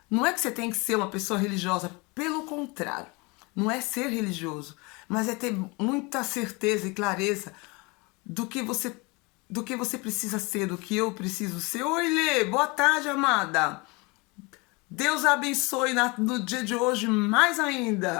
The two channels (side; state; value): right; quieter; 27.0 dB